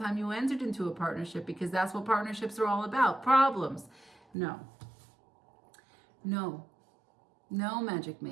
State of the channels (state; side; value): drops out; left; at 4.2 s